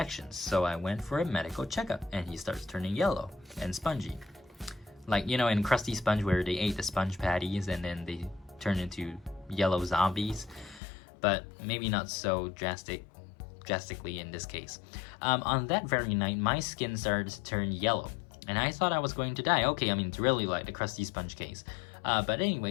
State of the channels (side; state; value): right; drops out; at 10.8 s